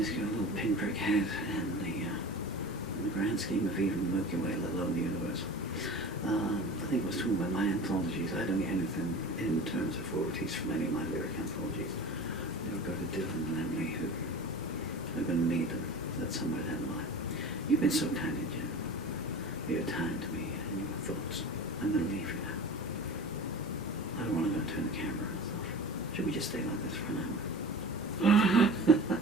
pinprick head in the grand scheme of even the Milky Way, let alone the universe. I think I was talking about my anthologies. I don't get anything in terms of royalties from any of my lyric anthologies. They'll go to Dylan and Emily, who are going to need them. That's somewhere down the line. You've been so kind, Jen. Your time to me and your thoughts. I'm going to leave you now. I don't want to go and turn the camera off. Should we just stay like this for an hour?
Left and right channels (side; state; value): both; normal; correlation 0.35